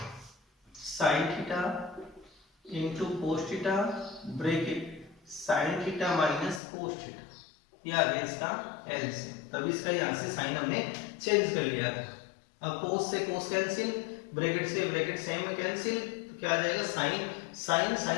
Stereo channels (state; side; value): drops out; right; at 6.6 s